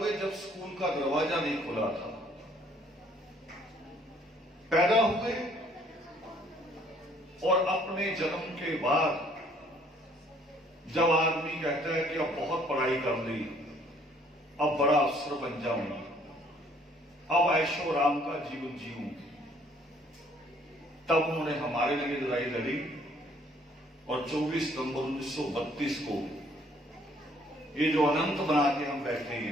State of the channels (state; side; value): normal; both; correlation 0.61